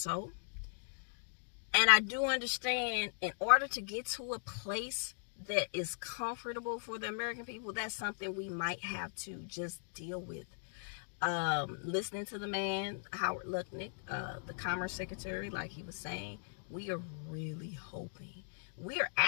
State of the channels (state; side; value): silent; right; digital silence